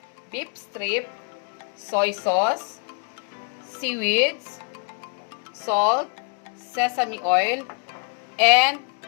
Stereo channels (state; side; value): quieter; right; 37.3 dB